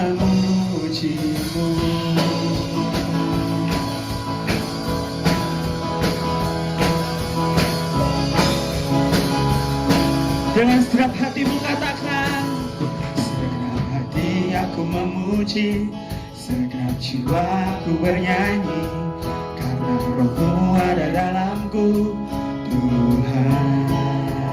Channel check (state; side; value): identical; both; correlation 1.00